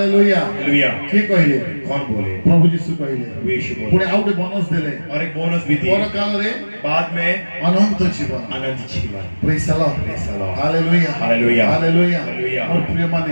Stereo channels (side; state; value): both; inverted; correlation -1.00